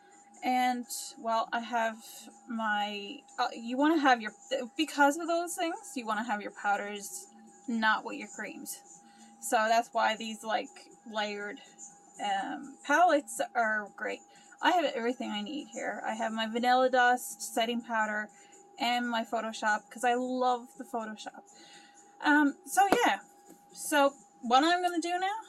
And, well, I have my, you want to have your, because of those things, you want to have your powders not with your creams. So that's why these, like, layered palettes are great. I have everything I need here. I have my Vanilla Dust, setting powder, and my Photoshop, because I love the Photoshop. So yeah. So what I'm going to do now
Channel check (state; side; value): identical; both; correlation 1.00